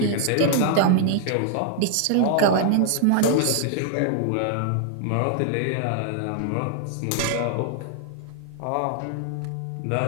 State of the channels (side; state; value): both; different; correlation 0.00